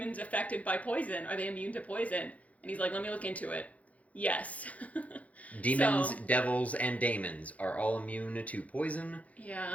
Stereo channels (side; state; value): right; late; 0.068 ms